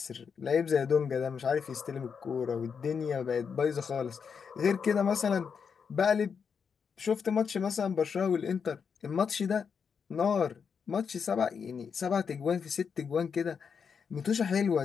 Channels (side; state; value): right; quieter; 6.4 dB